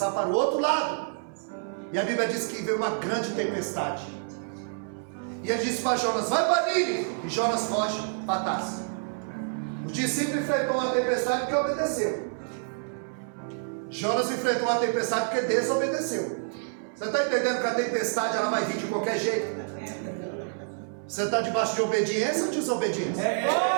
para o outro lado. E a Bíblia diz que veio uma grande tempestade. E ele disse para Jonas: vai para Nínive. E Jonas foge para Tarso. Os discípulos enfrentou uma tempestade porque obedeceu. Jonas enfrentou uma tempestade porque desobedeceu. Você está entendendo que a tempestade ela vai vir de qualquer jeito? Você está debaixo de obediência ou desobediência?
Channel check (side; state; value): left; silent; 59 dB below the other